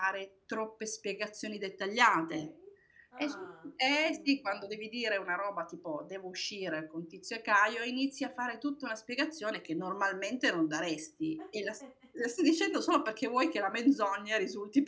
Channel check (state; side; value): identical; both; correlation 1.00